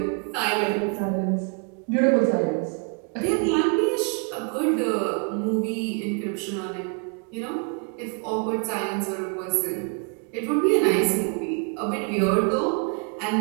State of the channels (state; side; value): quieter; left; 38.7 dB